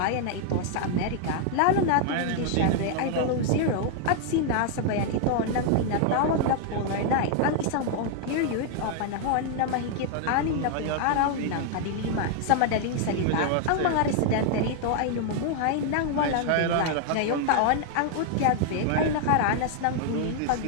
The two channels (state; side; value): different; both; correlation 0.00